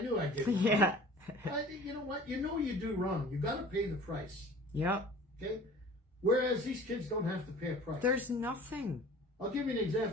knew I did. Yeah. You know what? You know you do wrong. You got to pay the price. Yep. Okay? Whereas these kids don't have to pay a price. There's nothing. I'll give you an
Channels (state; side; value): normal; both; correlation 0.45